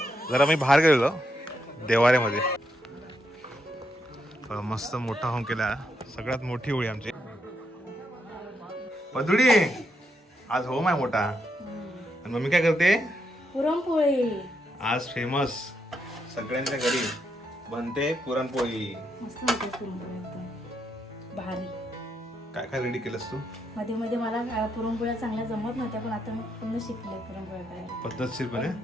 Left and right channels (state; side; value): normal; both; correlation 0.80